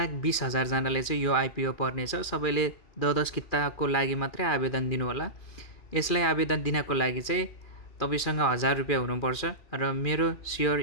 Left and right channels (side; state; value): right; late; 2.4 ms